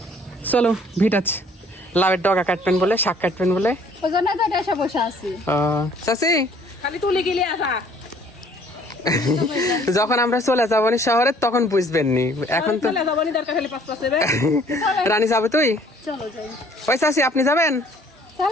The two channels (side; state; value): both; normal; correlation 0.58